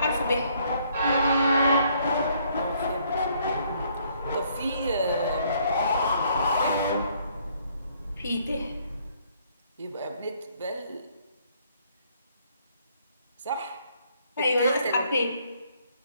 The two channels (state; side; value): inverted; both; correlation -0.67